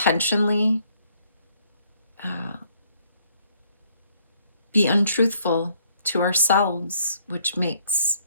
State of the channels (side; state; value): both; inverted; correlation -0.67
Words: be untruthful to ourselves, which makes